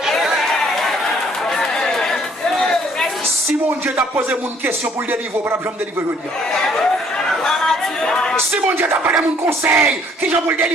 Si mon Dieu t'a posé une question pour le délivrer, pour ne me délivrer aujourd'hui. Si mon Dieu t'a pas donné mon conseil, qui j'en pour le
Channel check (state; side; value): normal; both; correlation 0.62